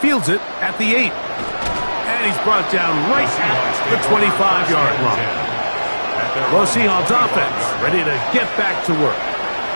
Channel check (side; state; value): both; inverted; correlation -1.00